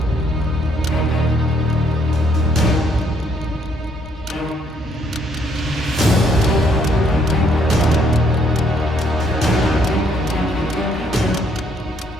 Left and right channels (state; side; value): normal; both; correlation 0.69